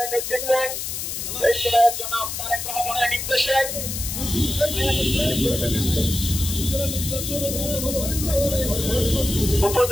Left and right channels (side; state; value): left; noise; hiss, 5 dB below the sound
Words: নেতৃত্বে দেশের জনাব তারেক রহমানের নির্দেশে